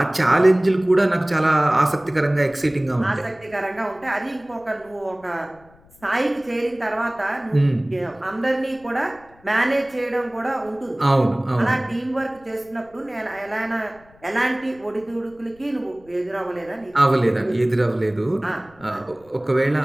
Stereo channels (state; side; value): noise; left; rumble, 28 dB below the sound